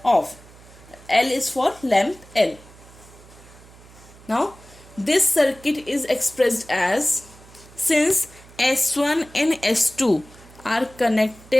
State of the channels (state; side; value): noise; right; hum, 22 dB below the sound